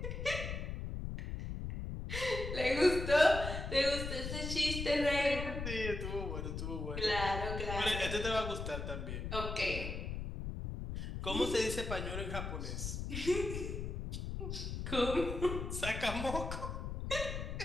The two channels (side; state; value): left; noise; rumble, 5 dB below the sound